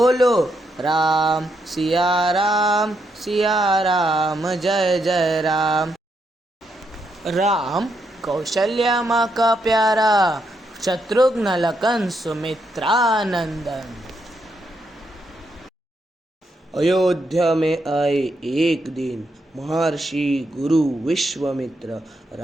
राम सिया राम जय जय राम। राम कौशल्या माँ का प्यारा, शत्रुघ्न लखन सुमित्रा नंदन। अयोध्या में आए एक दिन महर्षि गुरु विश्वामित्र।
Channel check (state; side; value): normal; both; correlation 0.79